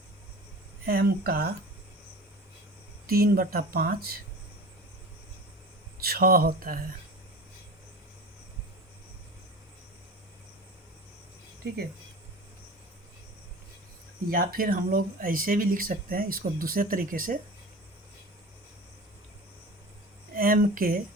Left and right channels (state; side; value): normal; both; correlation 0.35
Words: m का 3/5 6 होता है, ठीक है। या फिर हम लोग ऐसे भी लिख सकते हैं इसको दूसरे तरीके से, m के